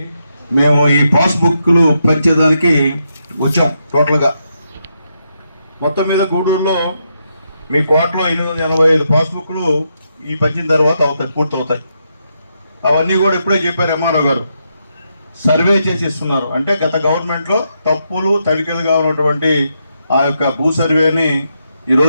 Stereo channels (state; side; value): inverted; both; correlation -0.81